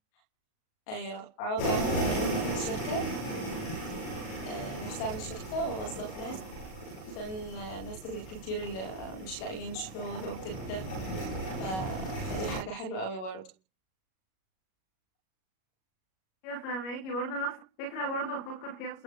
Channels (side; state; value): right; late; 37 ms